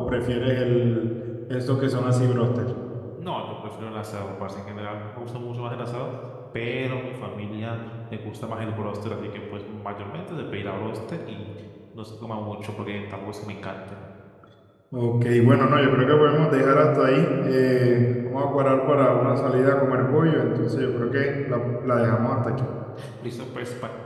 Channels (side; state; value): both; identical; correlation 1.00